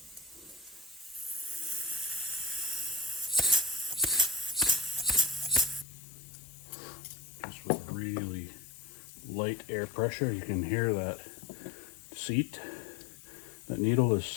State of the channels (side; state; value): right; drops out; at 5.9 s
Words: Just with really light air pressure, you can hear that seat, that needle is